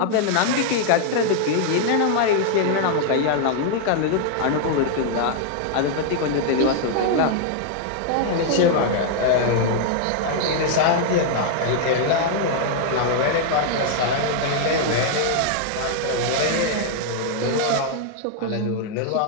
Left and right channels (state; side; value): different; both; correlation -0.01